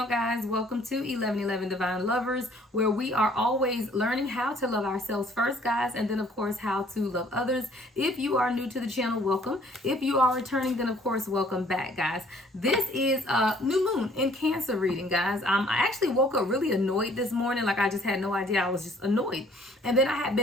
guys. Welcome to 1111 Divine Lovers, where we are always learning how to love ourselves first, guys, and then of course how to love others. If you are new to the channel, welcome. If you are returning, then of course welcome back, guys. This is a new moon in Cancer reading, guys. I actually woke up really annoyed this morning. Like, I just had no idea. I was just annoyed. And then I had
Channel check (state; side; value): normal; both; correlation 0.59